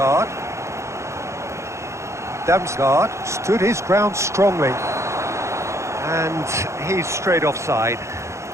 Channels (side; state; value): left; late; 0.14 ms